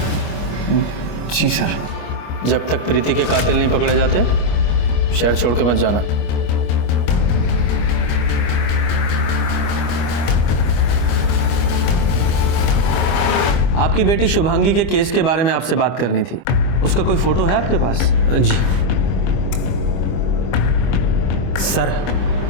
जी सर। जब तक प्रीति के कातिल नहीं पकड़े जाते शहर छोड़ के मत जाना। आपकी बेटी शुभांगी के केस के बारे में आपसे बात करनी थी। उसका कोई फोटो है आपके पास? जी सर,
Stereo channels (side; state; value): right; late; 25 ms